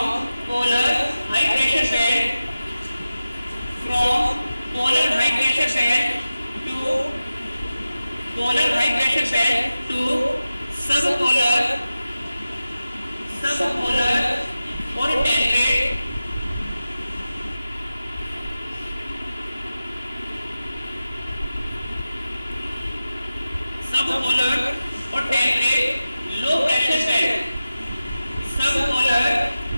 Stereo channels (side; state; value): both; inverted; correlation -0.94